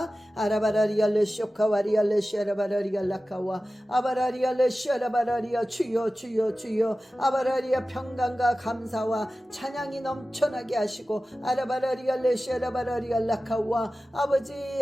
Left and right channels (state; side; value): normal; both; correlation 0.95